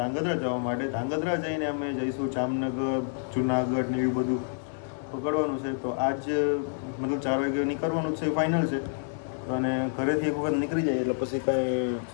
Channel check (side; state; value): right; silent; 59 dB below the other